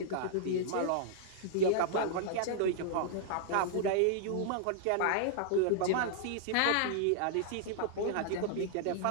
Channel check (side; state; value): both; different; correlation -0.01